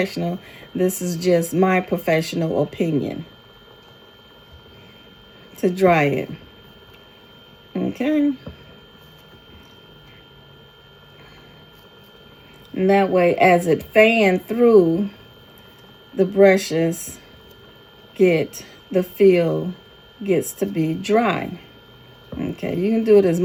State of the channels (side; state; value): both; identical; correlation 1.00